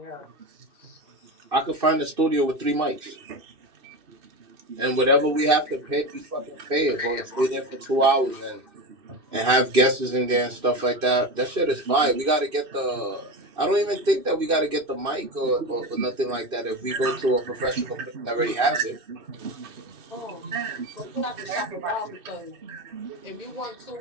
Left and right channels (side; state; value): left; late; 2.6 ms